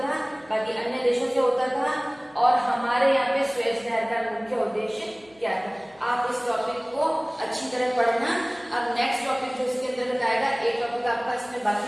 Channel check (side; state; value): left; noise; hum, 29 dB below the sound